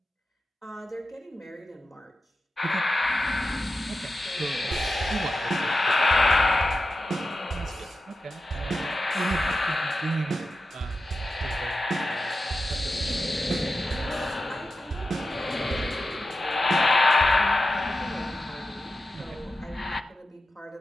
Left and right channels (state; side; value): normal; both; correlation 0.91